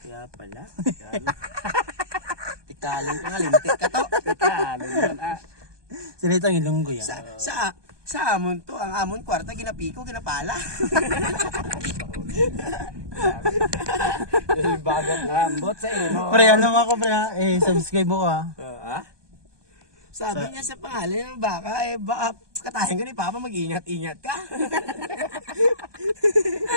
Kaya pala. Tikalon ka nga, lintik ka to. Tikalon yun. Sinitang ilonggo yan. Sa amon to, ang amon kwarta, ginapiko, ginapala. Bagat ambot sa iyo. Pre, ano mo ako pre ha? Subscribe mo ka. Sabi niya sa pangalan ng baka, baka katahin ka ni Papa, mag-ingat-ingat ka.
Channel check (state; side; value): late; left; 1.2 ms